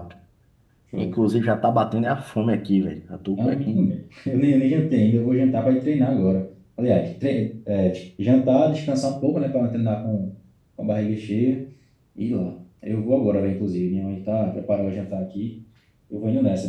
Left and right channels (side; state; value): both; identical; correlation 1.00